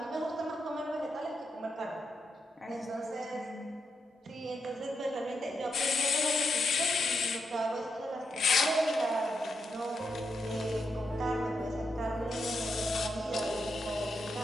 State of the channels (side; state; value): both; normal; correlation 0.83